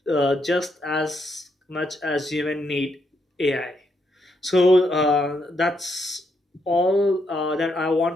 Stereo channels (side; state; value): both; normal; correlation 0.78